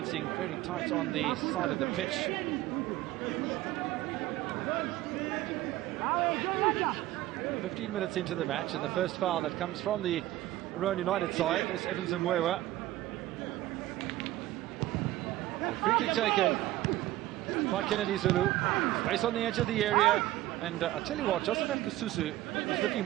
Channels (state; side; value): quieter; left; 15.8 dB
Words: very tight on the side of the pitch. So 15 minutes into the match, and the first foul that comes from the Roan United side is Evans and Mwewa. So free kick taken by Kennedy Zulu. Space on the edge of the area, and I tell you what, Josephat Kasusu is looking